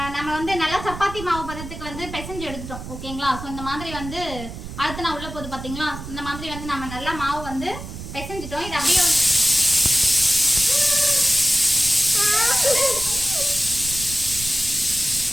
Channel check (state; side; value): noise; right; rumble, 11 dB below the sound